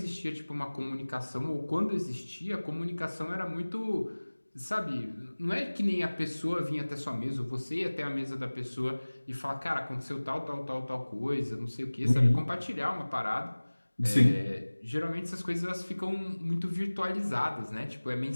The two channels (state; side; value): inverted; both; correlation -1.00